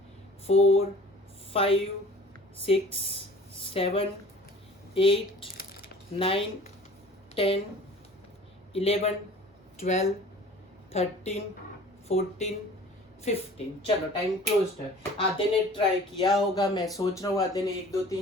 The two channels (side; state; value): both; normal; correlation 0.46